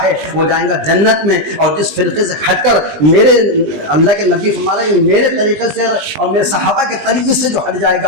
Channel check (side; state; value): left; late; 20 ms